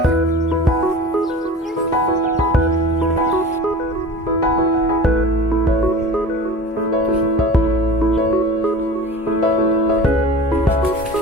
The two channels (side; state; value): both; normal; correlation 0.38